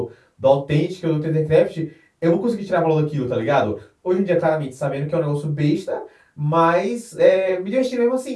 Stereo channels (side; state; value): both; identical; correlation 1.00